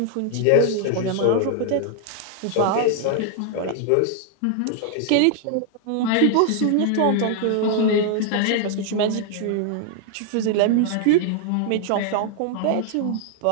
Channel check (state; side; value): different; both; correlation 0.00